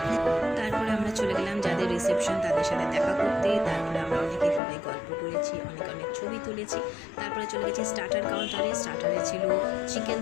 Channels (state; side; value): drops out; right; at 4.6 s